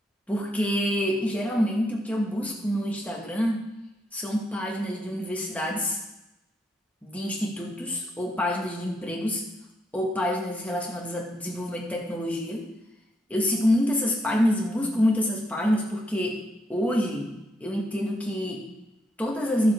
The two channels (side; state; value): both; normal; correlation 0.78